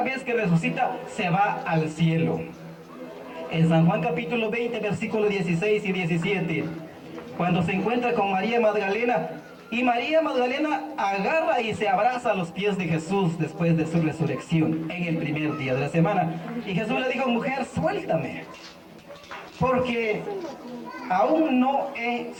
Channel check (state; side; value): identical; both; correlation 1.00